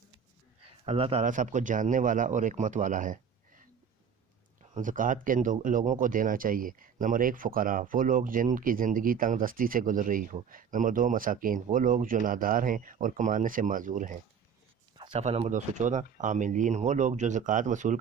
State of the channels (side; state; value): left; quieter; 7.0 dB